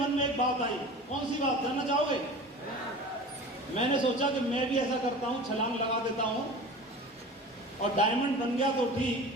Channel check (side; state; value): both; normal; correlation 0.36